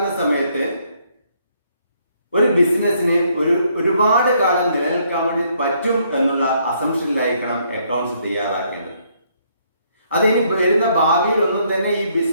സമയത്ത് ഒരു ബിസിനസ്സിന് ഒരുപാട് കാലം നിലനിൽക്കാൻ വേണ്ടി പറ്റും എന്നുള്ള അസംഷനിലായിരിക്കണം അക്കൗണ്ട്സ് തയ്യാറാക്കേണ്ടത്. അതിനി വരുന്ന ഭാവിയിൽ ഒന്നും തന്നെ ഈ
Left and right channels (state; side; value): inverted; both; correlation -0.70